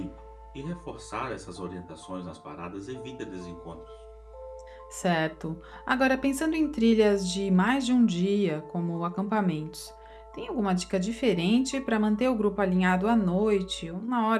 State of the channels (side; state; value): both; identical; correlation 1.00